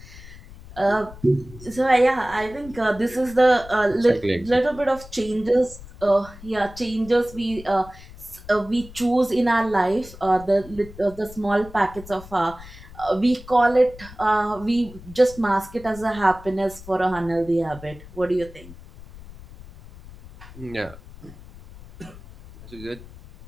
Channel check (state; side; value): noise; left; rumble, 18 dB below the sound